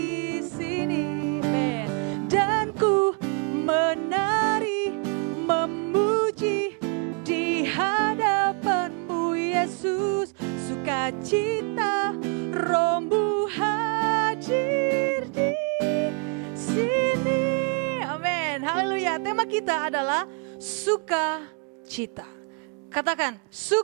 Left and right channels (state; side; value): quieter; left; 33.0 dB